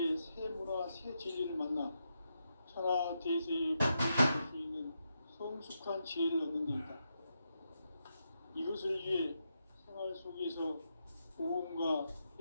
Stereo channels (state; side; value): inverted; both; correlation -0.84